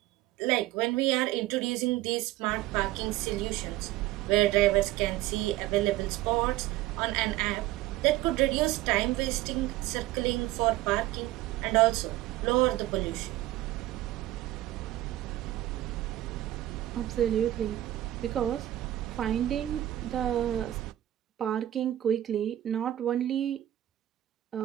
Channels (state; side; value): quieter; left; 14.7 dB